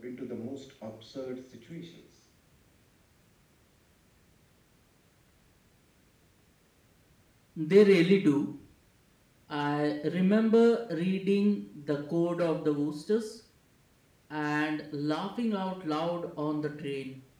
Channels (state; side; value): identical; both; correlation 1.00